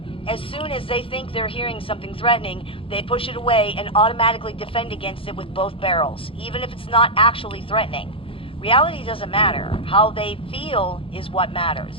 As soon as they think they're hearing something threatening, they push it away and automatically defend against it with both barrels, even if it's not actually threatening. Reality doesn't matter. How they feel is what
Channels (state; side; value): late; right; 0.26 ms